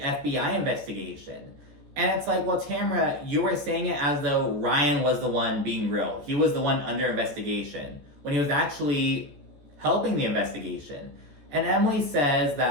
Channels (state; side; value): late; left; 14 ms